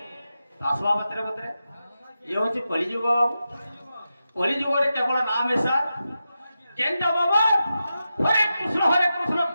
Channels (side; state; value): both; inverted; correlation -0.90